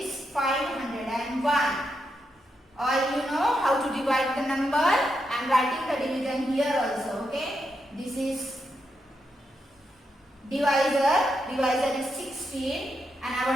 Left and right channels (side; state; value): both; normal; correlation 0.84